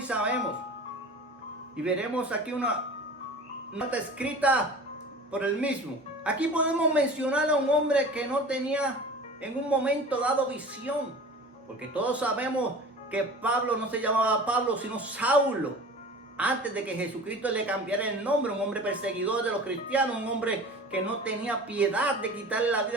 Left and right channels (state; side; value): normal; both; correlation 0.39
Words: sabemos, y veremos aquí una nota escrita por el mismo. Aquí podemos mencionar a un hombre que no tenía en un momento dado visión, porque todos sabemos que Pablo no se llamaba Pablo, sino Saulo, antes de que Jesucristo le cambiara el nombre. Un hombre perseguidor de los cristianos, un hombre que no tenía piedad de quitarle la